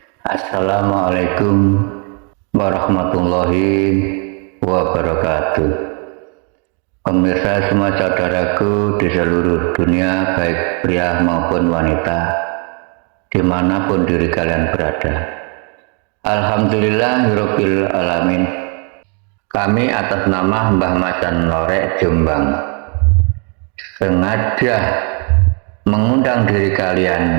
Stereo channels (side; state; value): left; quieter; 36.6 dB